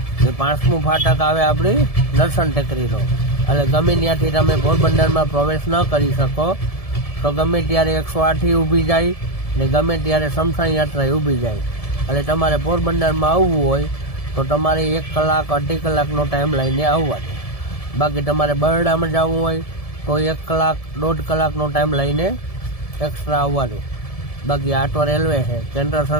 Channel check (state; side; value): late; right; 1.7 ms